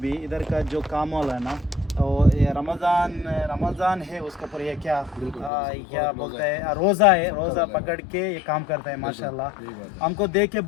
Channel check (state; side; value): drops out; right; at 5.5 s